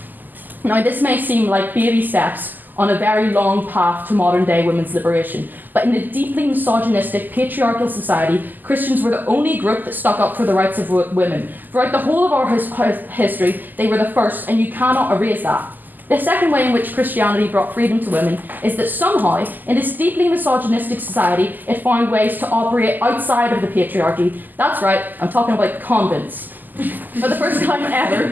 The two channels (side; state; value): left; late; 0.086 ms